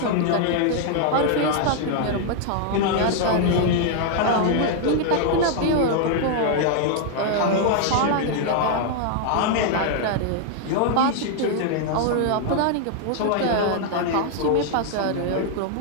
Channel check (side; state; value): both; different; correlation 0.00